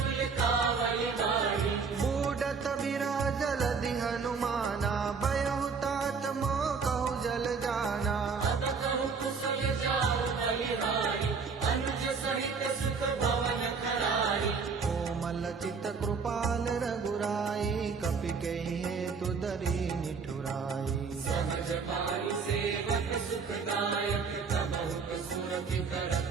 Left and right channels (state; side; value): quieter; left; 5.2 dB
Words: कावल गाढ़ी बूढ़त बिराजल दि हनुमाना बयहु तात मोह कहु जल जाना अब कहु कुशल जाओ बलिहारी अनुज सहित सुख भवन खरारी कोमल चित कृपाल रघुराई कपि कहि हेतु दरी निठुराई सहज पानी सेवक सुखदायक तबहु सुरति करत